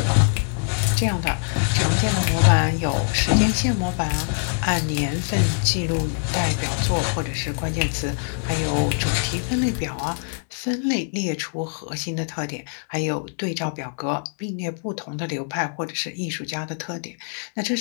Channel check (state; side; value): silent; right; digital silence